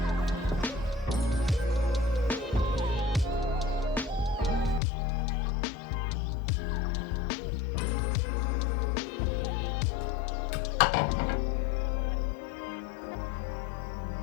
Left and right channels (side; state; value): right; drops out; at 4.8 s